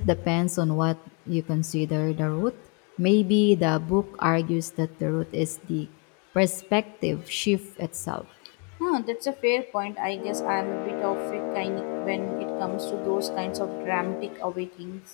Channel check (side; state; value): right; quieter; 34.7 dB